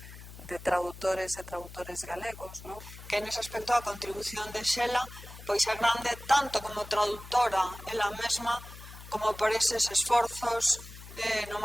de traductores e traductores galegos, non? Que nese aspecto a contribución de Xela pois é grande tanto como traductora ela mesma como por eses esforzos no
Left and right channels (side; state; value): left; noise; hum, 15 dB below the sound